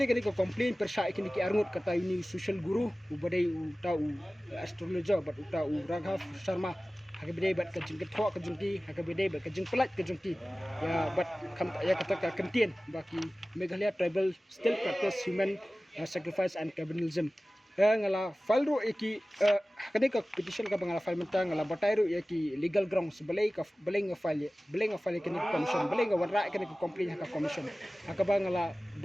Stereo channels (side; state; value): both; normal; correlation 0.97